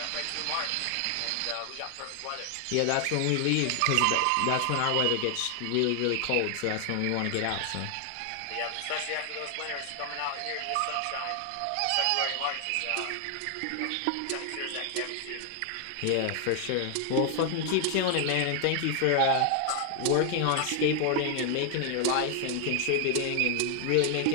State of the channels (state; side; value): different; both; correlation 0.00